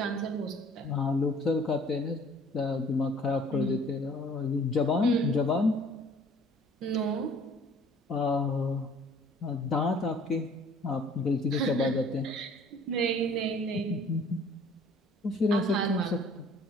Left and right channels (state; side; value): normal; both; correlation 0.54